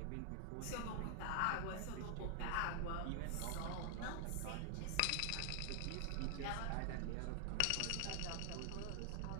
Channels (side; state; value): both; different; correlation 0.00